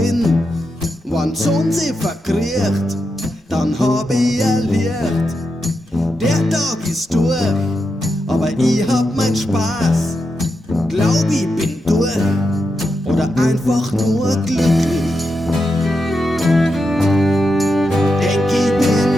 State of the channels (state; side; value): normal; both; correlation 0.86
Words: Wenn die Sonne sie verkriecht, dann hab ich ein Licht. Der Tag ist durch, aber ich hab mein Spaß. Glaub ich bin durch oder einfach nur glücklich. Denk ich